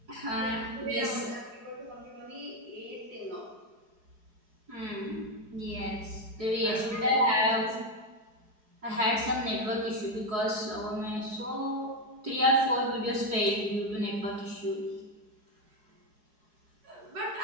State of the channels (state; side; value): late; left; 4.8 ms